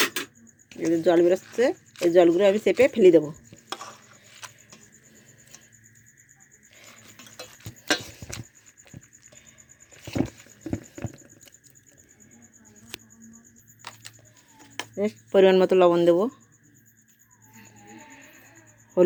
এদের জল বেরোচ্ছে, এই জলগুলো আমি চেপে ফেলে দেবো। পরিমাণ মতো লবণ দেবো।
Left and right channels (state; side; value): identical; both; correlation 1.00